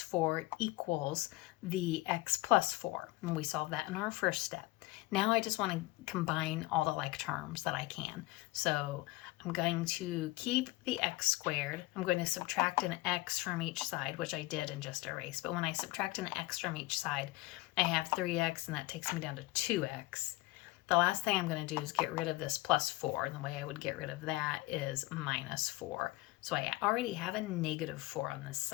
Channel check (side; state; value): right; quieter; 20.3 dB